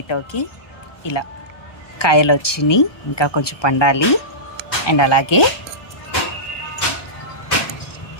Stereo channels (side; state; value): right; late; 1.2 ms